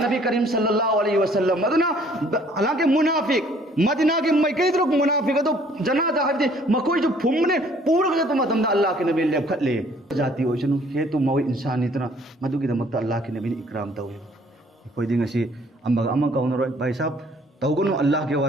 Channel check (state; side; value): normal; both; correlation 0.59